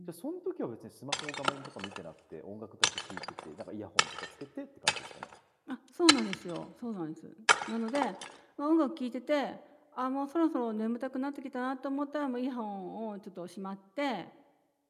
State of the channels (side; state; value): both; identical; correlation 1.00